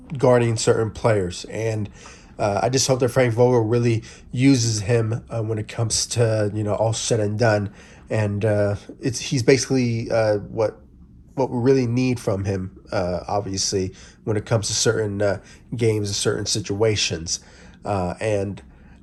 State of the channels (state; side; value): identical; both; correlation 1.00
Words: guarding certain players. And I just hope that Frank Vogel really uses him when it comes to all said and done. And he's basically what we really need from him, obviously, when it comes to certain games and certain situations.